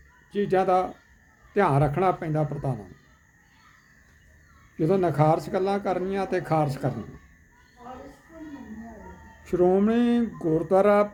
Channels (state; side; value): identical; both; correlation 1.00